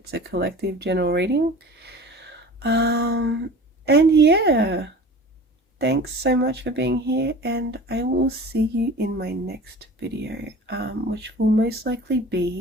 a collective general reading. And yeah, thanks so much for being here, and I will see you in my next video, which will most likely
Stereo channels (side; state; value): both; normal; correlation 0.40